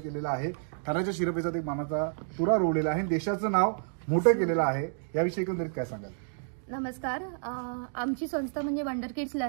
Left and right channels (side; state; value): left; silent; digital silence